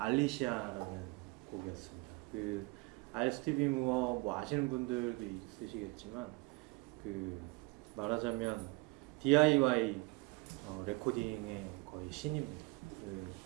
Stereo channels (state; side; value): quieter; left; 26.3 dB